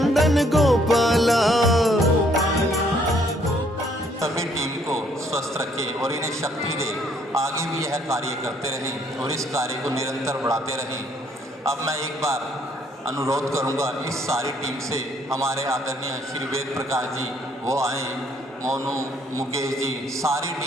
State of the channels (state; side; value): normal; both; correlation 0.66